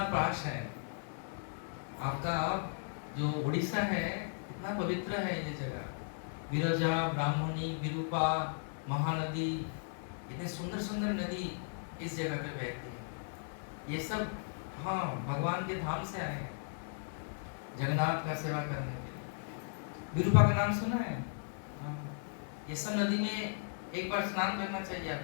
पास है, आपका जो उड़ीसा है इतना पवित्र है ये जगह। विरजा, ब्राह्मणी, विरूपा, महानदी, इतने सुंदर सुंदर नदी इस जगह पे बहती है। ये सब हाँ भगवान के धाम से आए हैं, जगन्नाथ का सेवा करने के लिए। विरूपा का नाम सुना है? हाँ। ये सब नदी में एक बार स्नान करना चाहिए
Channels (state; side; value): silent; right; 54 dB below the other